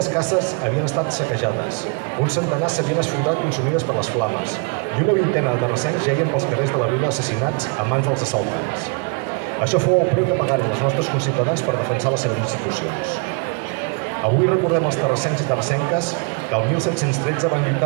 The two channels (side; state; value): left; quieter; 35.9 dB